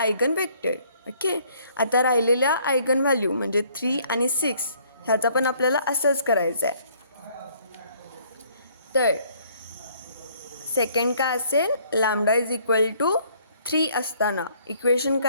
वेक्टर. ओके आता राहिलेल्या आयगन व्हॅल्यू म्हणजे 3 आणि 6 ह्याचा पण आपल्याला असंच करायचं आहे. तर सेकंड काय असेल लॅम्डा इज इक्वल टू 3 असताना इक्वेशन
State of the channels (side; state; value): both; inverted; correlation -0.62